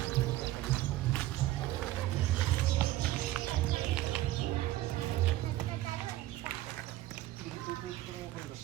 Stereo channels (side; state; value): left; quieter; 15.6 dB